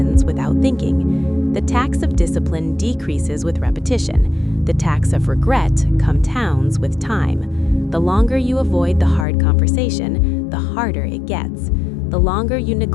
without thinking. The tax of discipline decreases with repetition. The tax of regret compounds with time. The longer you avoid the hard conversation, the harder it gets. The longer you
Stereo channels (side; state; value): right; drops out; at 9.2 s